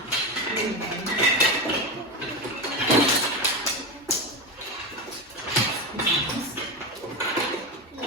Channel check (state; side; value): normal; both; correlation 0.17